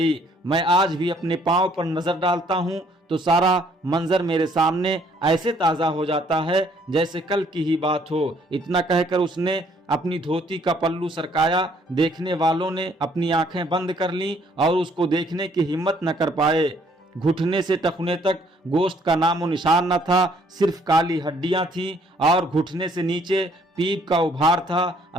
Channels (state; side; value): normal; both; correlation 0.64